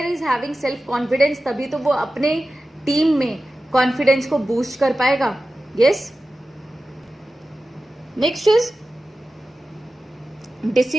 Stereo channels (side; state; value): both; normal; correlation 0.94